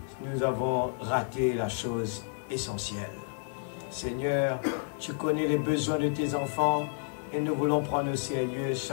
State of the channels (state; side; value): silent; right; digital silence